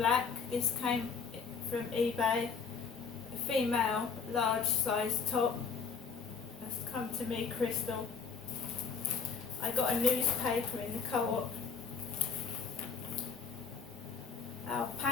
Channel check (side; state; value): right; quieter; 5.7 dB